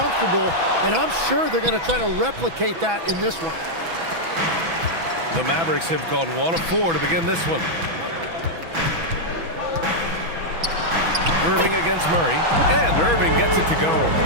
and I'm sure they're going to try to replicate that in this one. The Mavericks have gone 1 of 4 to begin this one. Irving against Murray, and Irving gets it to go.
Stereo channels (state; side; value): late; left; 6.1 ms